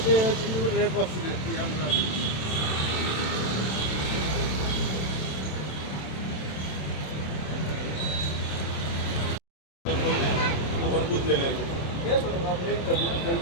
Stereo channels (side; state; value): right; late; 27 ms